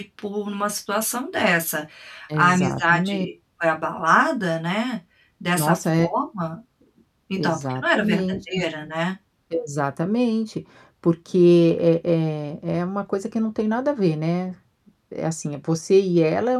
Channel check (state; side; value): identical; both; correlation 1.00